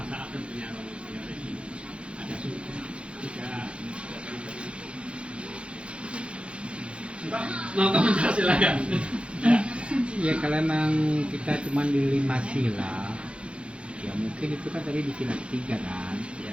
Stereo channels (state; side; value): late; left; 0.059 ms